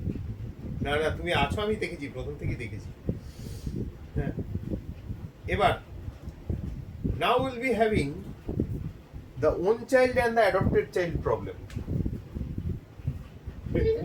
না না, তুমি আছো, আমি দেখেছি, প্রথম থেকেই দেখেছি। হ্যাঁ, এবার now we'll be having the own child and the adopted child problem.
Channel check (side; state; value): both; identical; correlation 1.00